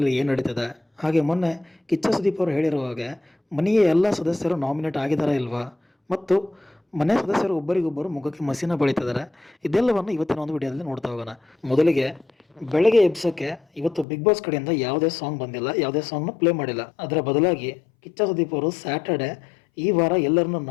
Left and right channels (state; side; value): drops out; right; at 14.1 s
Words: ಏನು ನಡೀತಿದೆ, ಹಾಗೆ ಮೊನ್ನೆ ಕಿಚ್ಚ ಸುದೀಪ್ ಅವರು ಹೇಳಿರೋ ಹಾಗೆ ಮನೆಯ ಎಲ್ಲ ಸದಸ್ಯರು ನಾಮಿನೇಟ್ ಆಗಿದ್ದಾರಾ ಇಲ್ವಾ, ಮತ್ತು ಮನೆ ಸದಸ್ಯರು ಒಬ್ಬರಿಗೊಬ್ಬರು ಮುಖಕ್ಕೆ ಮಸಿನ ಬಳಿತಿದ್ದಾರೆ. ಇದೆಲ್ಲವನ್ನು ಇವತ್ತಿನ ಒಂದು ವಿಡಿಯೋದಲ್ಲಿ ನೋಡ್ತಾ ಹೋಗೋಣ. ಮೊದಲಿಗೆ ಬೆಳಗ್ಗೆ ಎಬ್ಸೋಕ್ಕೆ ಇವತ್ತು ಬಿಗ್ ಬಾಸ್ ಕಡೆಯಿಂದ ಯಾವುದೇ ಸಾಂಗ್ ಬಂದಿಲ್ಲ, ಯಾವುದೇ ಸಾಂಗ್ನ ಪ್ಲೇ ಮಾಡಿಲ್ಲ. ಅದರ ಬದಲಾಗಿ ಕಿಚ್ಚ ಸುದೀಪ್ ಅವರು ಸ್ಯಾಟರ್ಡೆ ಈ ವಾರ ಎಲ್ಲರನ್ನೂ